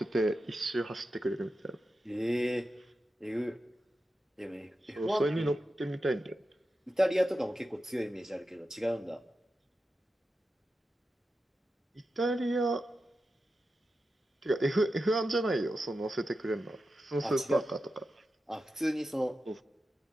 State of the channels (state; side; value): normal; both; correlation 0.91